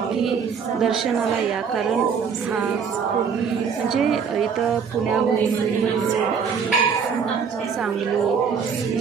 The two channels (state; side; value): quieter; left; 6.4 dB